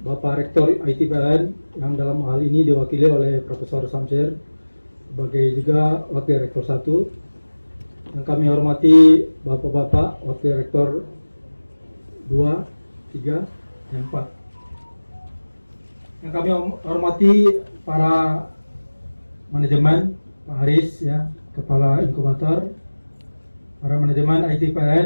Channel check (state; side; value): inverted; both; correlation -1.00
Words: Rektor ITPLN yang dalam hal ini diwakili oleh Profesor Samsir sebagai juga Wakil Rektor 1. Yang kami hormati Bapak-Bapak Wakil Rektor 2, 3, dan 4. Yang kami hormati para manajemen, Pak Haris ya, Kepala Inkubator, para manajemen